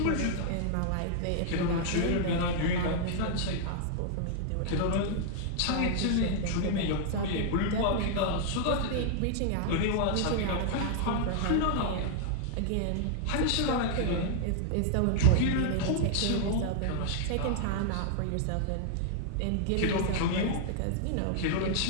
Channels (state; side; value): different; both; correlation -0.01